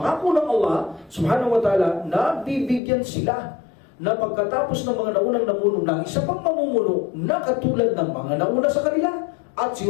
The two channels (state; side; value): drops out; right; at 2.8 s